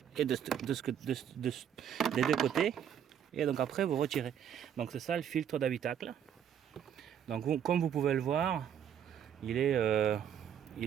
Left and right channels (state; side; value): quieter; left; 9.0 dB